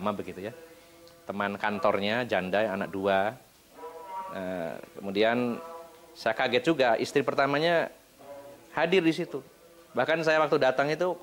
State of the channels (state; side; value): identical; both; correlation 1.00